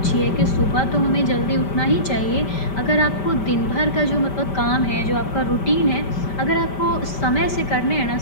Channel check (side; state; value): right; late; 5.1 ms